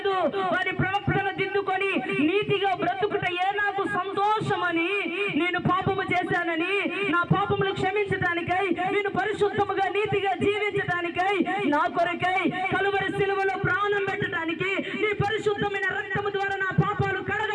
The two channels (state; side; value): identical; both; correlation 1.00